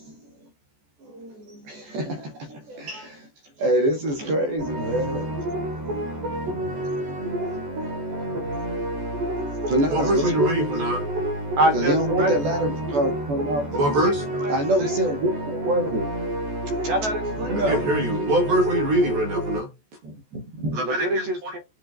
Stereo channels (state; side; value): late; left; 14 ms